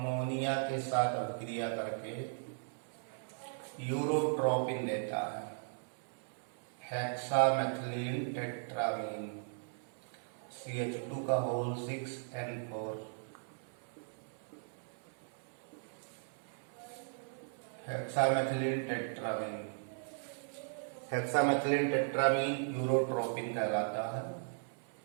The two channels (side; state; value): left; silent; 53 dB below the other